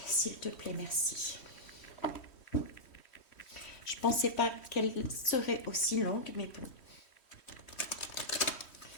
s'il te plaît, merci. Je ne pensais pas qu'elle serait aussi longue, mais bon.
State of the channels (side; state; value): right; late; 3.1 ms